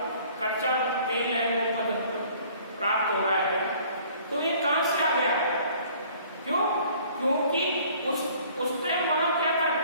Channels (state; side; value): inverted; both; correlation -0.54